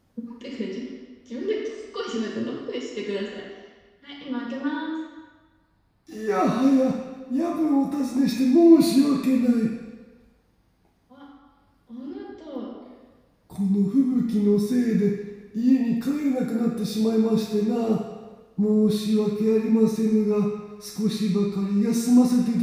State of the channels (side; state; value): both; identical; correlation 1.00